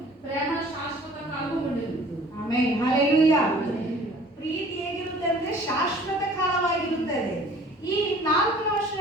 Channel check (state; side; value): normal; both; correlation 0.50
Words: ప్రేమ శాశ్వత కాలము ఉండదు. Amen, hallelujah. ಪ್ರೀತಿ ಹೇಗಿರುತ್ತೆ ಅಂದ್ರೆ ಶಾಶ್ವತ ಕಾಲವಾಗಿರುತ್ತದೆ. ಈ 4 ವರ್ಷ